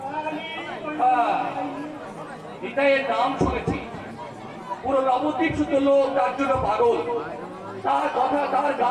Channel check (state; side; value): identical; both; correlation 1.00